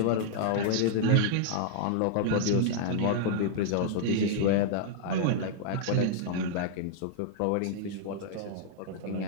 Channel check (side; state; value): both; different; correlation -0.01